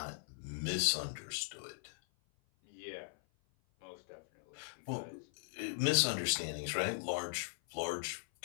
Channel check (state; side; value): silent; right; 52 dB below the other